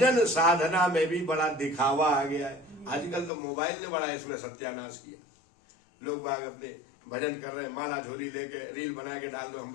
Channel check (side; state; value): right; drops out; at 3.3 s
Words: साधना में भी बड़ा दिखावा आ गया है। आजकल तो मोबाइल ने बड़ा इसमें सत्यानाश किया। लोग बाग अपने भजन कर रहे हैं, माला झोली लेके रील बना के डाल दो हम